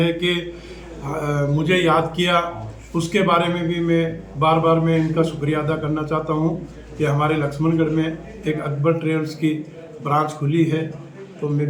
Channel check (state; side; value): identical; both; correlation 1.00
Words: कि मुझे याद किया, उसके बारे में भी मैं इनका शुक्रिया अदा करना चाहता हूँ कि हमारे लक्ष्मणगढ़ में एक अकबर ट्रेवल्स की ब्रांच खुली है। तो मैं